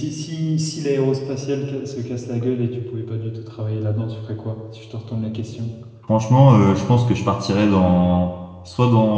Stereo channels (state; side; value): identical; both; correlation 1.00